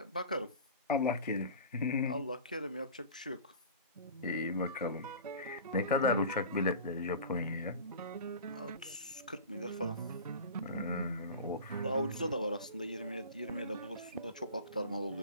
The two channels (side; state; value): both; inverted; correlation -0.36